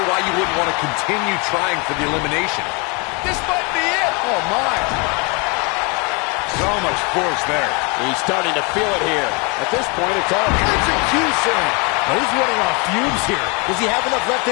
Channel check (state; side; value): quieter; right; 31.4 dB